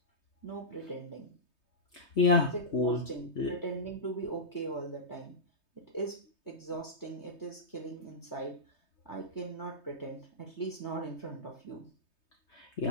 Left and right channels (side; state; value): right; late; 3.2 ms